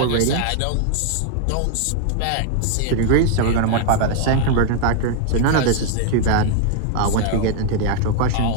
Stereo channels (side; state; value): both; different; correlation 0.00